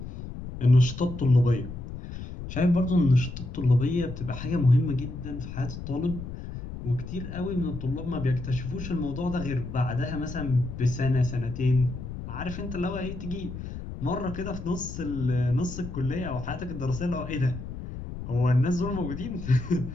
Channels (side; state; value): left; noise; rumble, 9 dB below the sound